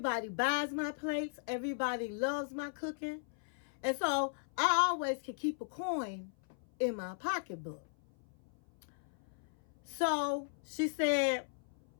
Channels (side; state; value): right; silent; 53 dB below the other